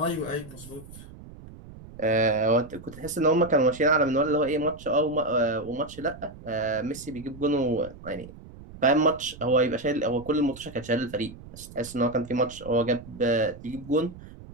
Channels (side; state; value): right; noise; rumble, 17 dB below the sound